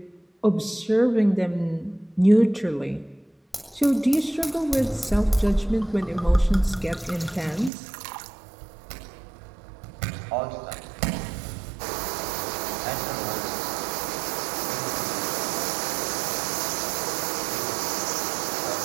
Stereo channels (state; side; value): drops out; left; at 7.7 s